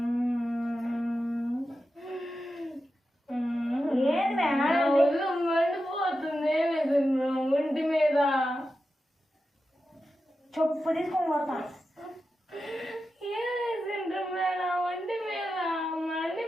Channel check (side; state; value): both; normal; correlation 0.91